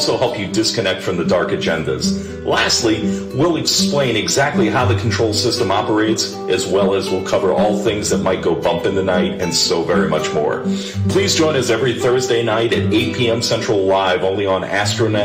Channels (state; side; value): identical; both; correlation 1.00